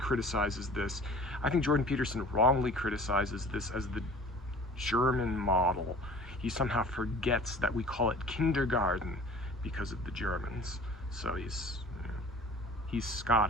this. I think Jordan Peterson wrongly criticizes this as the German model. He somehow forgets that we call it kindergarten because of the Germans. So he's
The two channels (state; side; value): normal; both; correlation 0.45